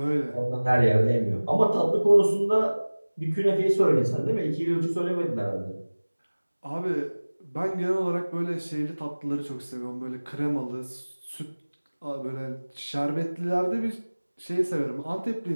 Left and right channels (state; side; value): inverted; both; correlation -1.00